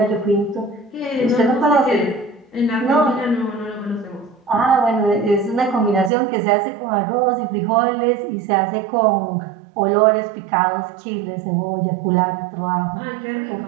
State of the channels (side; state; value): left; drops out; at 6.1 s